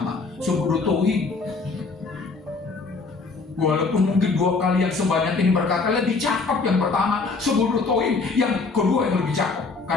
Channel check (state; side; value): quieter; right; 4.1 dB